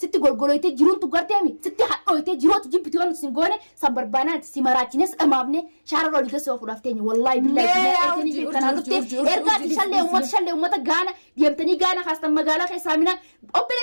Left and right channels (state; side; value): inverted; both; correlation -1.00